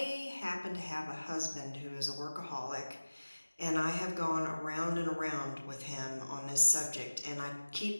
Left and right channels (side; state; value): both; inverted; correlation -1.00